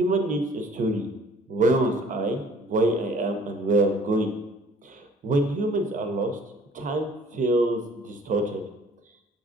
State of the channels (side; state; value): both; normal; correlation 0.54